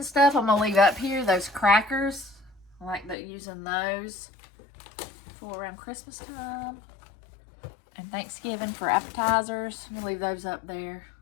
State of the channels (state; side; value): drops out; right; at 3.2 s